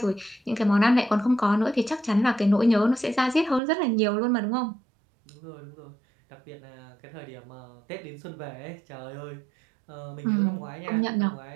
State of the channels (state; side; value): drops out; left; at 3.6 s